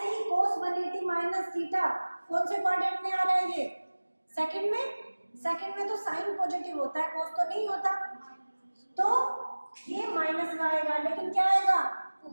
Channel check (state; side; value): inverted; both; correlation -1.00